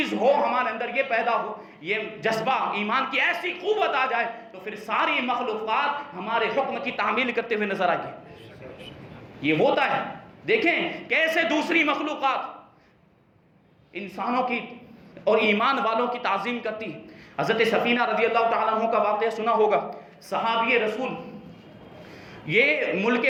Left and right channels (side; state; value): both; identical; correlation 1.00